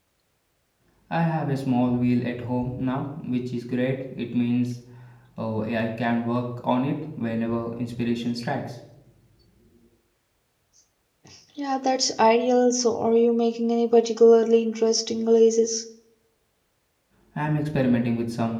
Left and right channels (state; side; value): identical; both; correlation 1.00